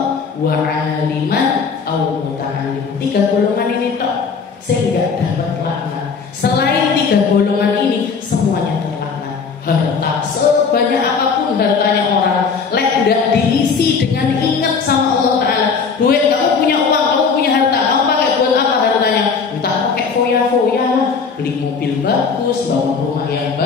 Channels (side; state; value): right; quieter; 5.5 dB